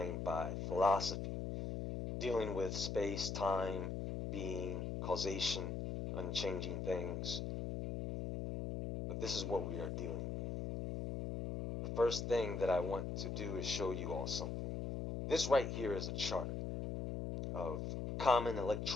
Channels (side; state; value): left; noise; hum, 3 dB below the sound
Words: by philosophy, dealing with space, time, being, causation, unchanging things. But this is what we are dealing with. The first thing that I want to do is show you all something. This right here is a chart of common